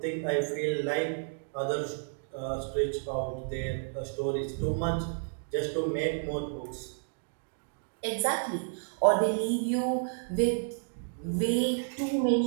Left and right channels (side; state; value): left; silent; digital silence